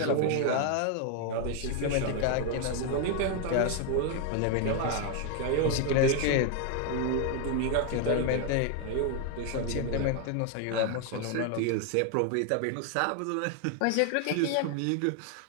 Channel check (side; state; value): both; different; correlation 0.01